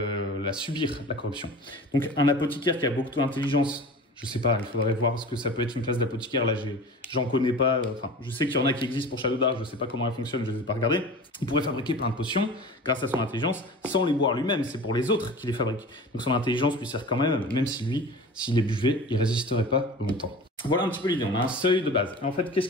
subir, la corruption. Donc, un apothicaire qui a beaucoup d'intelligence, je sais pas, il faudrait voir ce que ça peut être une classe d'apothicaire. Là, j'en connais pas. Enfin, je sais qu'il y en a qui existent pour Shadow Dark. Je sais pas comment elle fonctionne, je ne vais pas regarder. Il pourrait fabriquer plein de potions grâce à son intelligence sans les boire lui-même. C'est pour les autres qu'il les fabrique. Donc, son intelligence lui sert quand même si lui, s'il les buvait, il résisterait pas longtemps. Voilà un petit peu l'idée. On a un seuil de base. Et en fait, qu'est-ce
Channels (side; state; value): both; normal; correlation 0.36